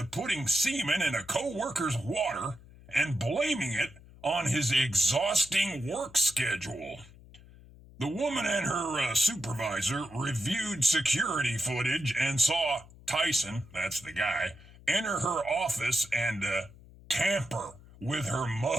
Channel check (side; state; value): left; noise; hum, 21 dB below the sound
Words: putting semen in a co-worker's water and blaming it on his exhausting work schedule. The woman and her supervisor reviewed security footage and saw Tyson, that's the guy, enter her office and tamper with her